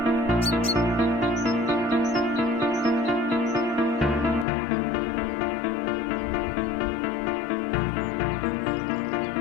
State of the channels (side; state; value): right; drops out; at 4.5 s